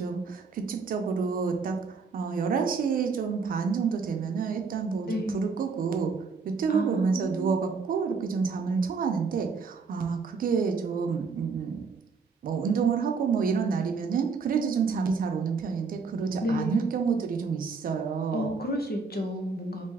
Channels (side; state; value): left; quieter; 4.8 dB